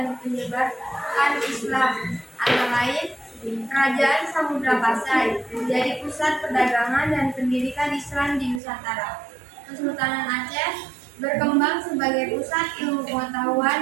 menyebarkan Islam. Antara lain, Kerajaan Samudra Pasai menjadi pusat perdagangan dan pendidikan Islam di Nusantara. Kesultanan Aceh berkembang sebagai pusat ilmu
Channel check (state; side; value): drops out; left; at 8.6 s